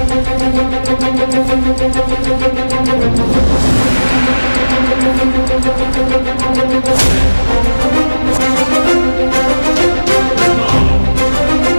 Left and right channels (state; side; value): inverted; both; correlation -1.00